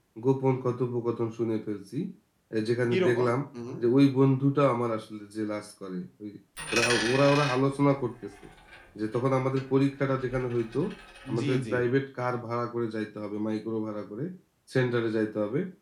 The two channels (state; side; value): identical; both; correlation 1.00